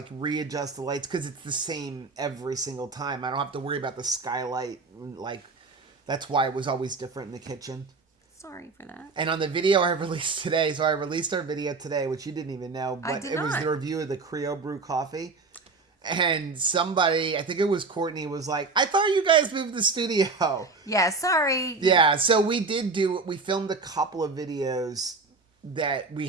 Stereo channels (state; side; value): quieter; left; 4.0 dB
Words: readjust the lights because it's the same every single time. I don't have to worry about the skylight. Like, that's why it was always different in the kitchen. Sorry for that. And on the video I released today, so I released our video today, which you didn't even know, but it was the review of the Creole Brew coffee. And somebody, I think it was Courtney, was like, I thought you guys moved the studio. Yeah, sorry. Yeah, so we filmed a couple of videos that we